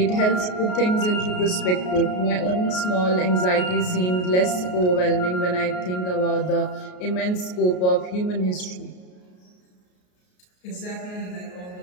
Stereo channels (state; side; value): late; right; 33 ms